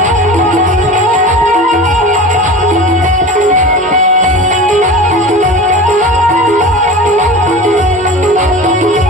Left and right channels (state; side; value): normal; both; correlation 0.33